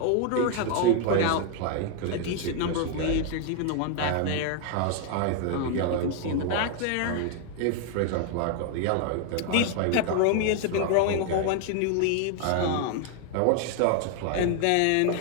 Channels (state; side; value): different; both; correlation 0.00